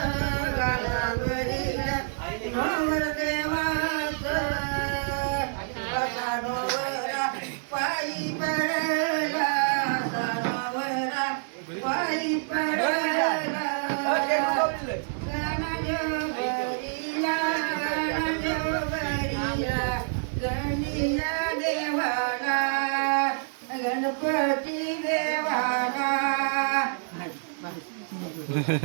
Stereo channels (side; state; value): left; silent; digital silence